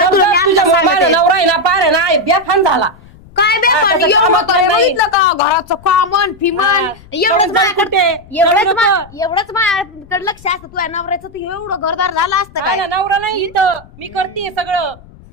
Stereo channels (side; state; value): left; noise; rumble, 23 dB below the sound